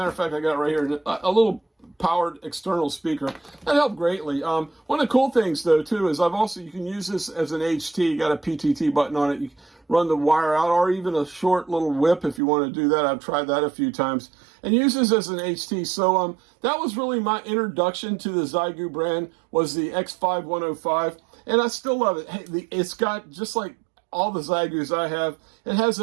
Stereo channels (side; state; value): left; drops out; at 12.4 s